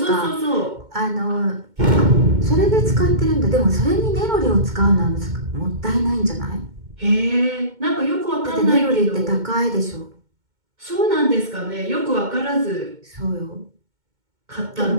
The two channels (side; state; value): left; late; 2.2 ms